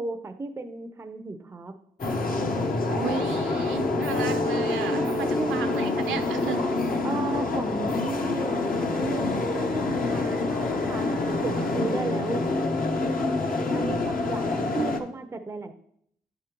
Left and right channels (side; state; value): both; normal; correlation 0.67